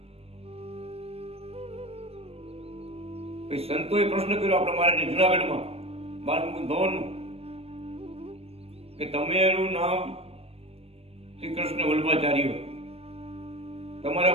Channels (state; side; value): late; left; 0.29 ms